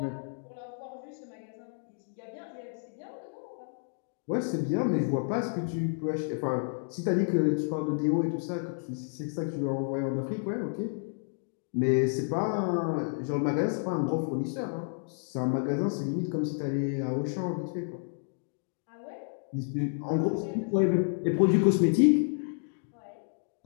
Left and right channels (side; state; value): right; silent; digital silence